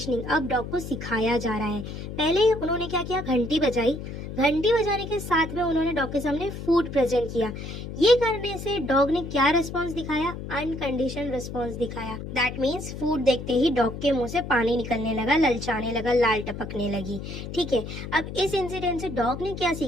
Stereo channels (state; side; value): noise; left; hum, 8 dB below the sound